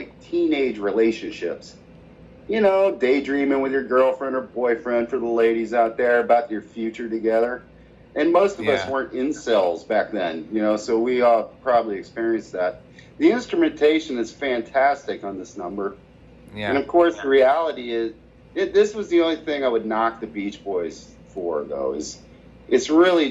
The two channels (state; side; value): identical; both; correlation 1.00